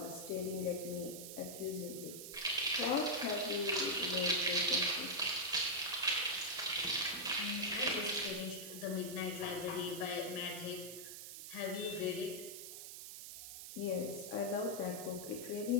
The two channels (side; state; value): right; noise; hiss, 10 dB below the sound